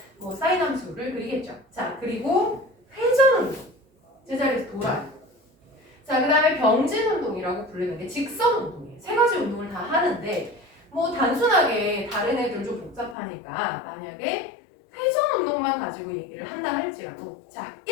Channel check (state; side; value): drops out; right; at 13.2 s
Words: 뭐 사인 함수를 그리겠죠. 자, 그리고 회전 운동, 제자리에서 돌아요. 자, 그 다음에 병진 운동이라고 부르는 게 직선 운동이에요. 세 가지 운동을 다 하는데 뭐 단순하게 다른 애들 좀 복잡하니까 만약에 회전 운동만 가지고 얘기를 한다 할지라도 자,